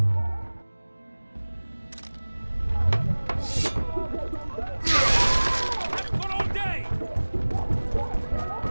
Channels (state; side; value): inverted; both; correlation -1.00